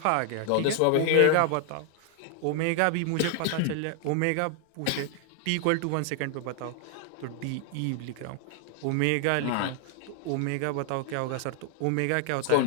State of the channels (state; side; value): different; both; correlation 0.00